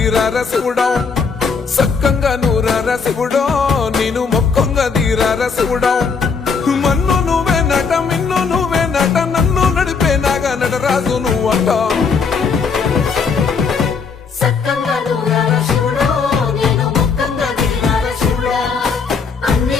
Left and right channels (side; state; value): right; quieter; 5.4 dB